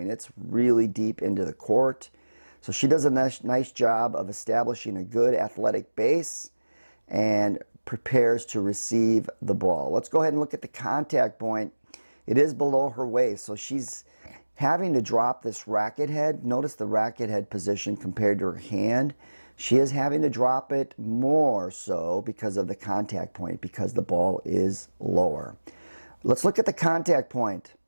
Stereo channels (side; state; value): both; inverted; correlation -1.00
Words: it's really deep into the court. So she does a nice job of establishing a good athletic base and prepares to receive the ball. Let's go ahead and look at the contact point. It is below her waist, so she's having to drop this racket head. Notice the racket head position compared to her hand. She is having to drop it more so because of the contact point, because the ball is lower. Let's look at the contact point.